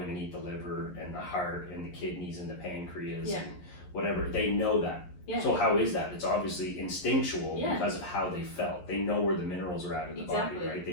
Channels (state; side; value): late; right; 11 ms